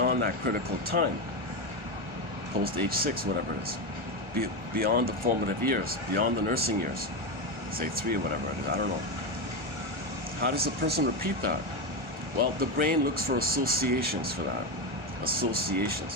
that critical time? Post age 6, whatever it is. Beyond the formative years, beyond the nursing years, say 3 or whatever it is, I don't know. How does a person repeat that? Well, the brain looks for associations for that.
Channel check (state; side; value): late; left; 1.4 ms